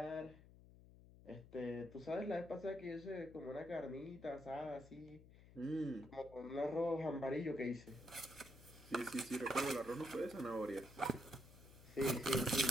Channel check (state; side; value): noise; left; hum, 20 dB below the sound